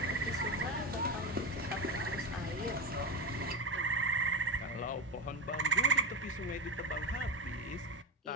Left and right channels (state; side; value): normal; both; correlation 0.19